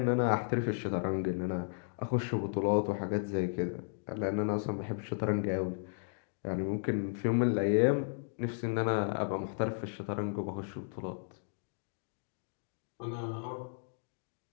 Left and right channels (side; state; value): right; silent; digital silence